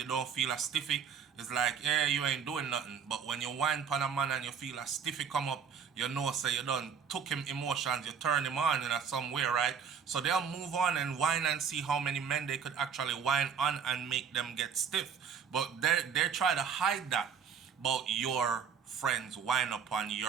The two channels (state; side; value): quieter; left; 7.0 dB